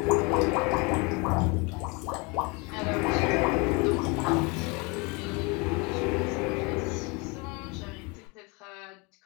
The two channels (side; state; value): right; quieter; 28.9 dB